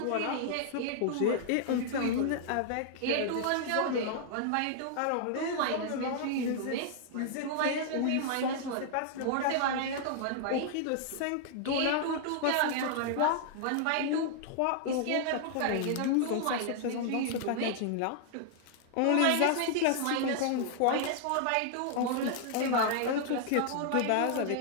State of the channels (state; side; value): different; both; correlation -0.01